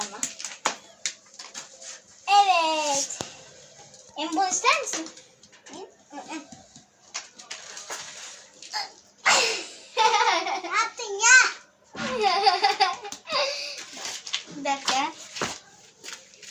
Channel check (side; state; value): both; identical; correlation 1.00